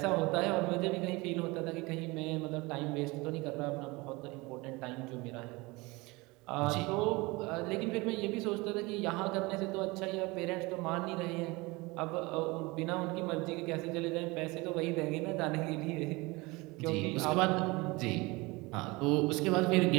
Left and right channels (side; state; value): left; quieter; 23.9 dB